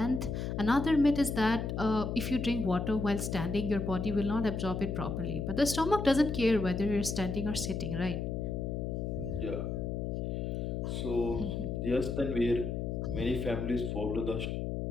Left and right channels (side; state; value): left; noise; hum, 2 dB below the sound